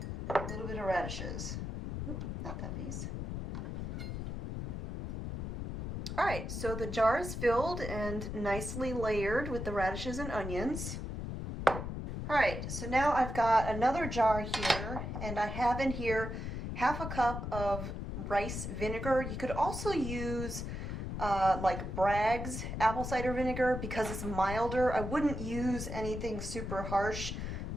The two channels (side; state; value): left; noise; rumble, 5 dB below the sound